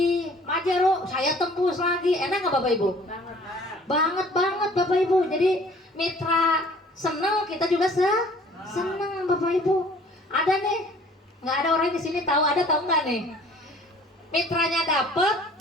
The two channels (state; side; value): normal; both; correlation 0.53